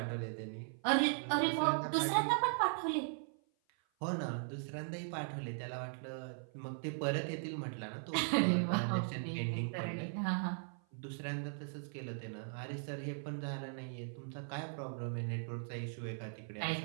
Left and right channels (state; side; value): silent; left; 52 dB below the other